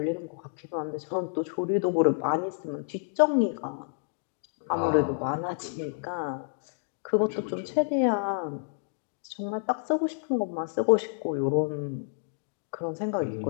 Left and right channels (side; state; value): right; silent; digital silence